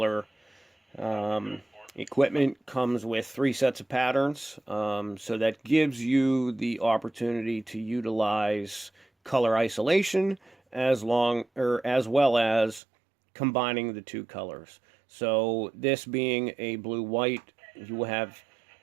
equipment comes with 3 sets of patterns, so that gives you the opportunity to utilize color isolation as well as combining the 2 colors. So this being a blue-white, you will have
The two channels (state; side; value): drops out; left; at 12.8 s